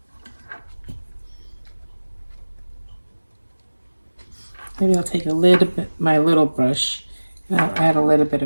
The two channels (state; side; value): inverted; both; correlation -1.00